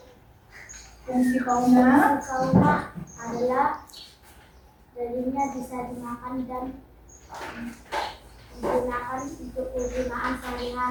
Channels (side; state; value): both; identical; correlation 1.00